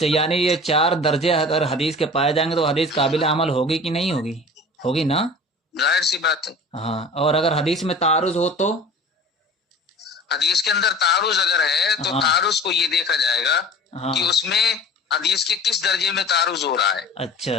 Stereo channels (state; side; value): normal; both; correlation 0.41